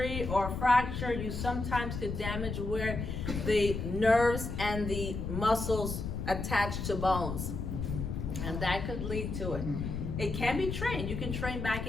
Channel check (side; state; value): left; noise; rumble, 4 dB below the sound